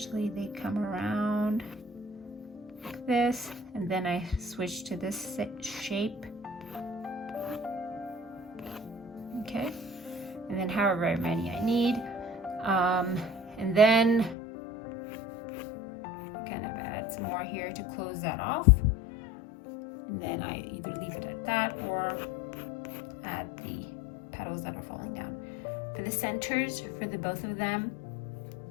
they come around like this, and then I switch to this shape. Okay, and then however many I need, and then kind of add some more here to close that off, and then I either leave it at that or add the petals that are falling down. For the centers, for the both of them,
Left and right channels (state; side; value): drops out; right; at 14.4 s